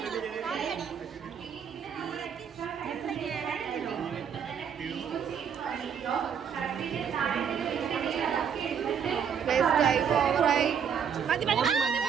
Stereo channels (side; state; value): left; quieter; 7.5 dB